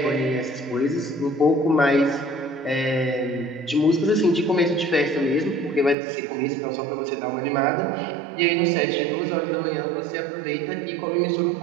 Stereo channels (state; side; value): drops out; left; at 6.0 s